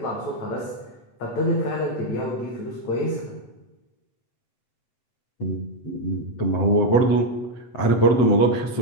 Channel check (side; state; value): right; late; 7.9 ms